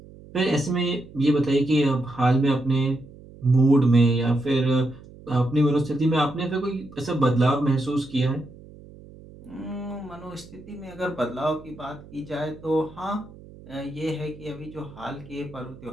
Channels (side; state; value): right; noise; hum, 20 dB below the sound